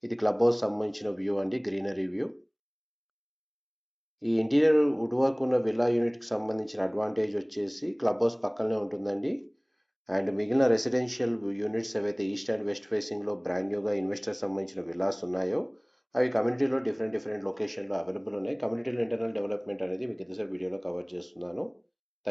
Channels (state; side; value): identical; both; correlation 1.00